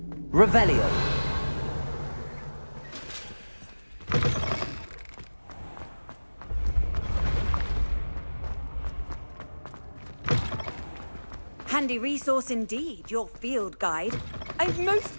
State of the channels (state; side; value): inverted; both; correlation -1.00